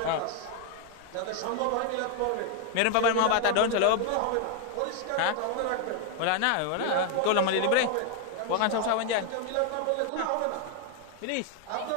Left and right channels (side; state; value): both; different; correlation 0.00